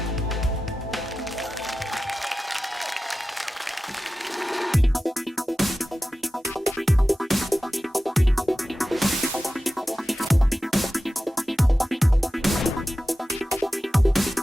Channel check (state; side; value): normal; both; correlation 0.94